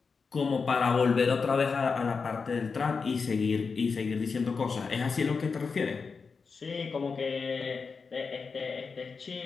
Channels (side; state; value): right; quieter; 5.0 dB